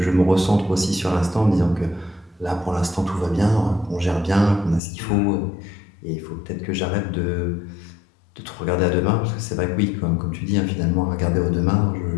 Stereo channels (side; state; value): right; drops out; at 4.8 s